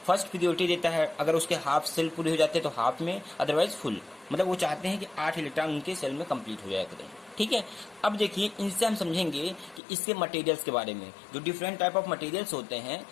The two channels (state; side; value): drops out; right; at 9.8 s